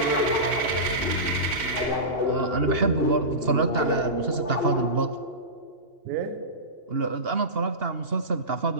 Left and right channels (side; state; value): left; late; 2.8 ms